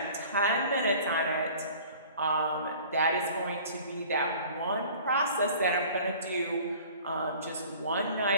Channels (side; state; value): both; inverted; correlation -0.47